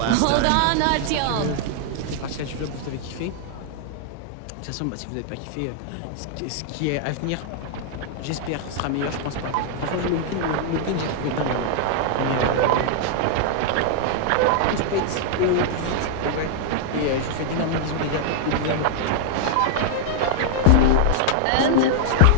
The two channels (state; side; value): different; both; correlation -0.01